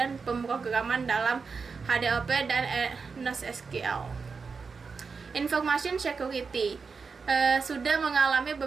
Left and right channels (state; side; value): quieter; left; 5.0 dB